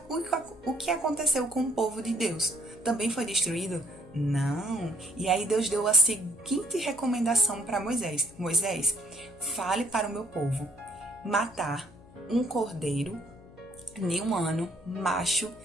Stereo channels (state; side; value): noise; left; hum, 23 dB below the sound